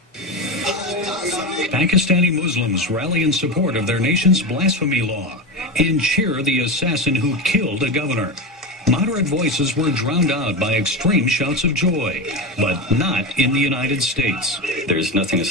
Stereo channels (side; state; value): both; normal; correlation 0.19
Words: Pakistani Muslims rally in support of their nation's blasphemy law and cheer the assassin who killed a governor. Moderate voices were drowned out by extreme shouts of joy, but not in the United States. There's nothing